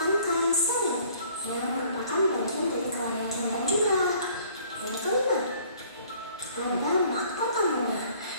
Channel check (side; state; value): both; inverted; correlation -0.56